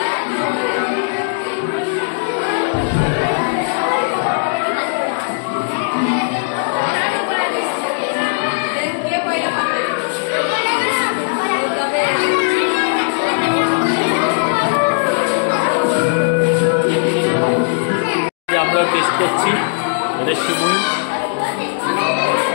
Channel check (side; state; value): right; silent; digital silence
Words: আমরা টেস্ট করছি এটা শিমুই